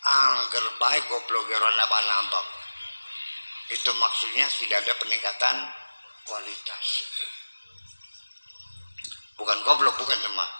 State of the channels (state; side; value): inverted; both; correlation -1.00